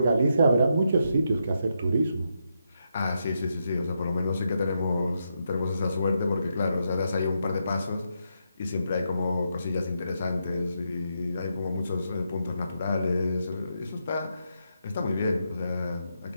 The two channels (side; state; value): both; inverted; correlation -0.82